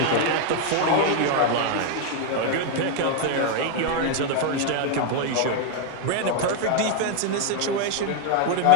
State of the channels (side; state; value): both; different; correlation 0.01